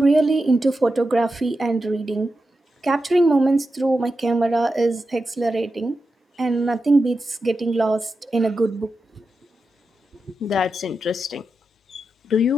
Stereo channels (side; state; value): both; normal; correlation 0.90